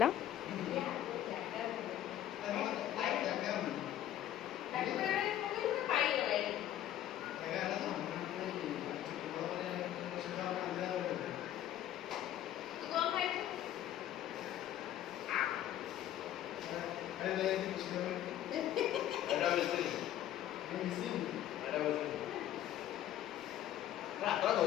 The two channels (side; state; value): right; quieter; 12.1 dB